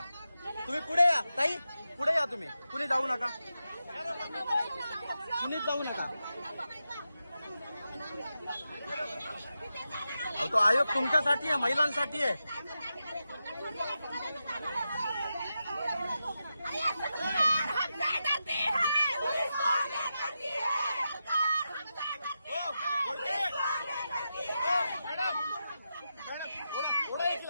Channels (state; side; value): inverted; both; correlation -0.89